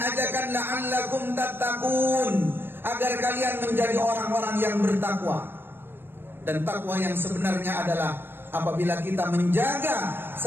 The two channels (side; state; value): left; late; 0.10 ms